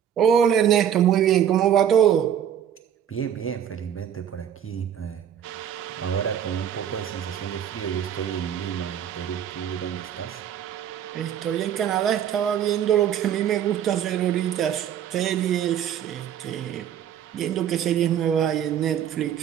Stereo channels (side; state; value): left; quieter; 9.5 dB